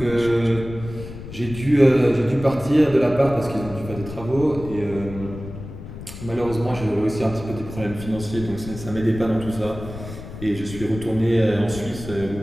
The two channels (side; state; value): left; noise; rumble, 12 dB below the sound